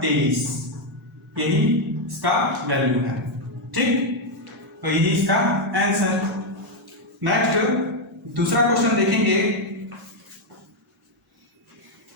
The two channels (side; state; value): both; normal; correlation 0.02